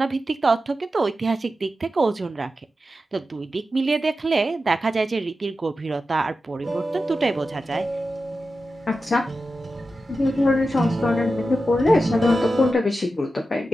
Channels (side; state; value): both; normal; correlation 0.91